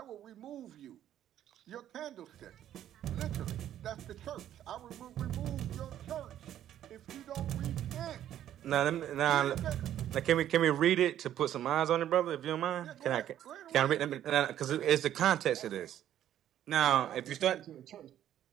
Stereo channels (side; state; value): left; quieter; 11.4 dB